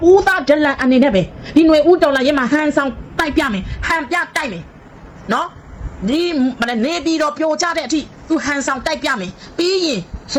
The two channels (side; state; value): both; identical; correlation 1.00